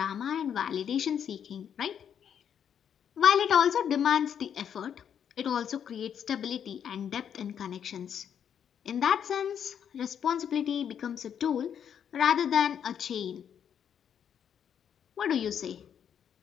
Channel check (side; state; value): right; quieter; 8.5 dB